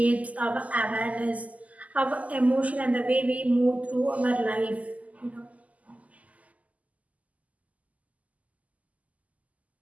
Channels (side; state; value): left; late; 0.073 ms